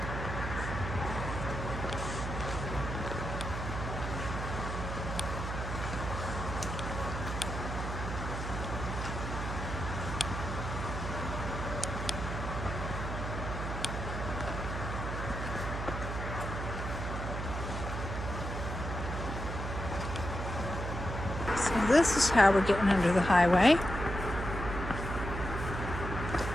So this is how we're getting under the highway.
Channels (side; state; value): right; noise; hum, 4 dB below the sound